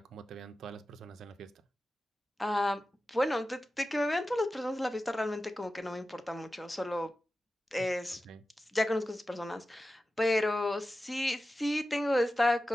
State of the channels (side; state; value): both; normal; correlation 0.94